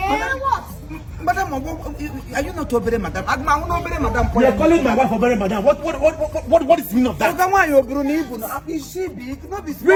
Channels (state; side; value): identical; both; correlation 1.00